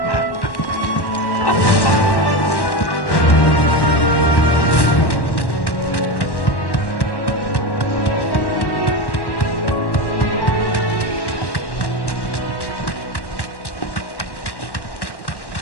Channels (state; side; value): late; right; 1.1 ms